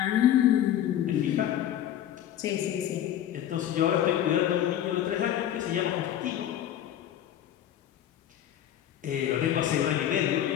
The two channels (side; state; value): right; quieter; 11.1 dB